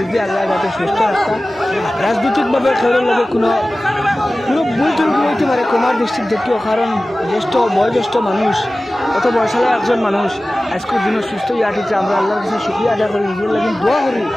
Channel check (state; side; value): normal; both; correlation 0.97